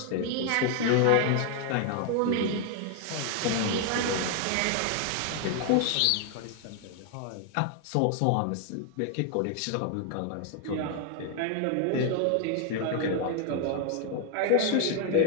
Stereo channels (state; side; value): different; both; correlation 0.00